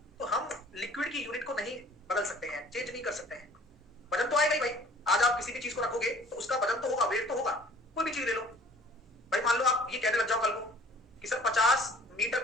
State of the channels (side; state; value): both; normal; correlation 0.52